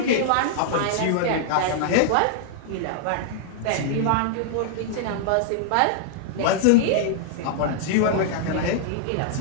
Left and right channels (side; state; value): both; different; correlation -0.01